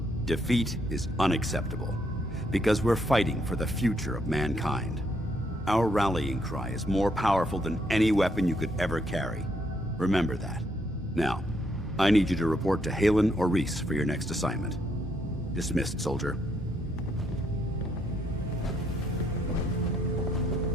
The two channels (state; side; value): normal; both; correlation 0.74